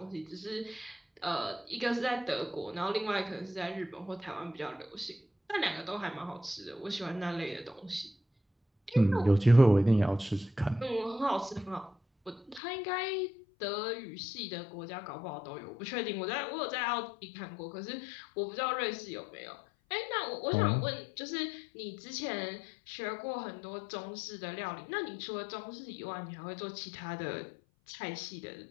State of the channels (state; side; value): drops out; right; at 12.6 s